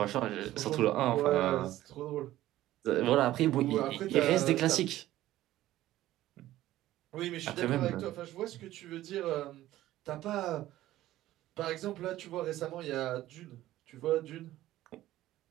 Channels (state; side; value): quieter; left; 14.8 dB